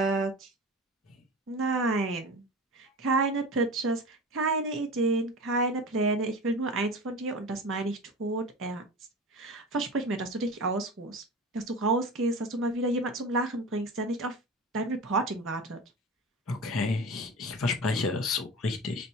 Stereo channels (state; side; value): normal; both; correlation 0.31